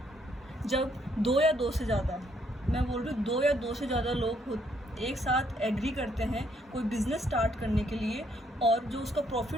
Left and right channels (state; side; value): normal; both; correlation 0.70